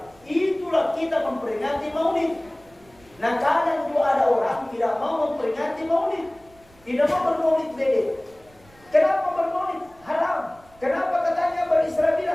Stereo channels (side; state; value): right; noise; rumble, 28 dB below the sound